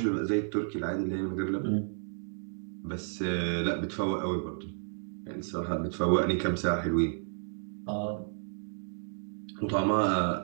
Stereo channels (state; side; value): silent; left; digital silence